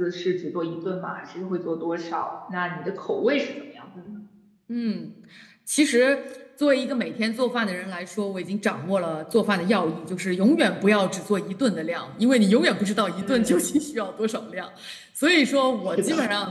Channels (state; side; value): identical; both; correlation 1.00